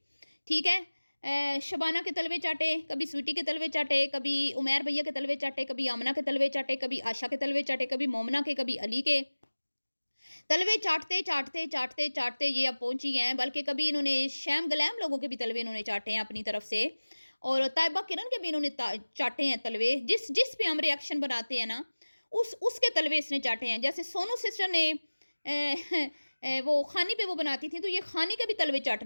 ठीक है। शबाना के तलवे चाटे, कभी स्वीटी के तलवे चाटे, कभी उमैर भैया के तलवे चाटे, कभी आमना के तलवे चाटे, कभी आशा के तलवे चाटे, कभी मोमना के, कभी अली के तलवे चाटते चाटते चाटते चाटते ये अब पहुंची हैं। बल्कि कभी इन्होंने शैम गलैम लोगों के भी तलवे इन्होंने चाटे हैं अपनी तरफ से, और ताइबा किरण के भी इन्होंने चाटे हैं तलवे। जिस जिस पे हम रिएक्शन बनाते हैं ना, उसके तलवे इसने चाटे हैं। जैसे सोनू सिस्टर ने वो खानी पे वो बनाती थी, तो ये खानी के भी तलवे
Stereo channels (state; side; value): inverted; both; correlation -1.00